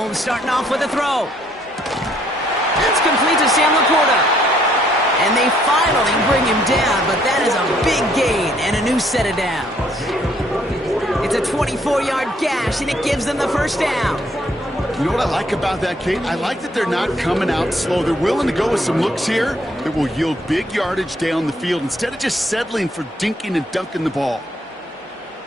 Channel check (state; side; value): normal; both; correlation 0.67